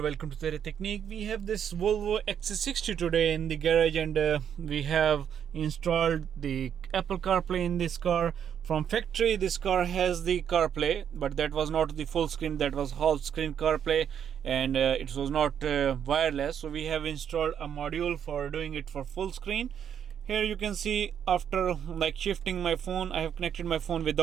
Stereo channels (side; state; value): left; quieter; 8.6 dB